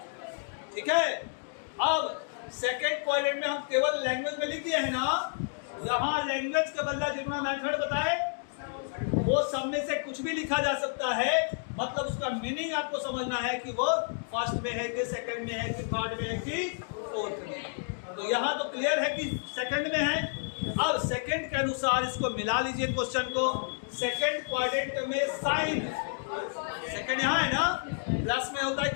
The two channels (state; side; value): silent; right; digital silence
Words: ठीक है। अब सेकंड क्वाड्रेंट में हम केवल लैंग्वेज में लिख दिए है ना, यहाँ लैंग्वेज के बदला जितना मेथड बताए वो सब में से कुछ भी लिखा जा सकता है, मतलब उसका मीनिंग आपको समझना है कि वो फर्स्ट में है कि सेकंड में है कि थर्ड में है कि फोर्थ में। तो यहाँ तो क्लियर है कि सेकंड में है। अब सेकंड के अनुसार इसको मिला लीजिए क्वेश्चन को। सेकंड क्वाड्रेंट में साइन, सेकंड यहाँ है ना, प्लस में होता है